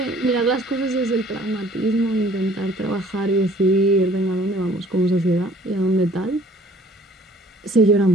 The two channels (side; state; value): both; normal; correlation 0.55